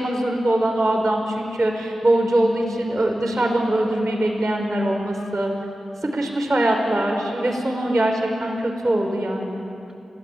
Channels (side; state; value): both; normal; correlation 0.94